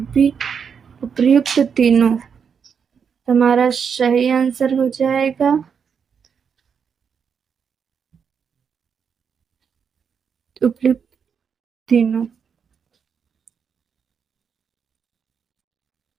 उपयुक्त तीनों। हमारा सही आंसर हो जाएगा उपयुक्त तीनों।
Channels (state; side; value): quieter; left; 6.7 dB